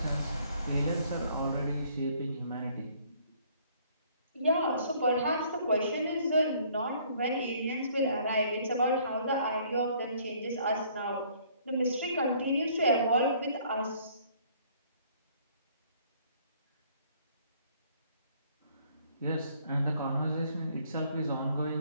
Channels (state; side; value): inverted; both; correlation -0.60